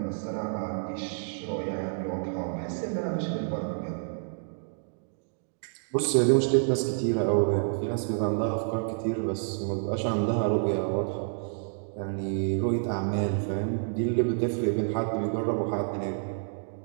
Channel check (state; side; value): silent; left; digital silence